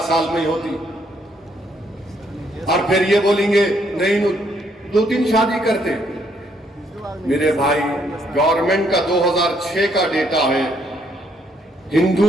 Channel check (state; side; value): normal; both; correlation 0.71